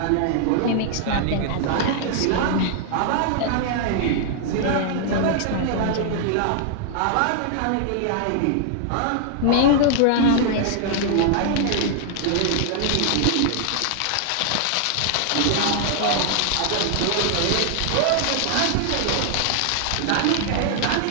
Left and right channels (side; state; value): both; different; correlation -0.01